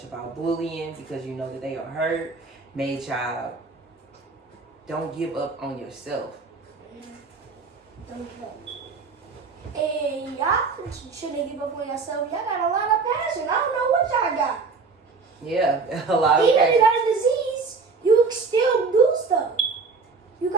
about bullying because you know that they are hurt, made y'all don't give up on yourself. Don't give up. And y'all shouldn't give up on yourself. Y'all got a lot of passion. I don't know what y'all got. Yeah, a lot of Even if passion. you got a disease, you can still do stuff. You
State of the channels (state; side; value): quieter; left; 4.5 dB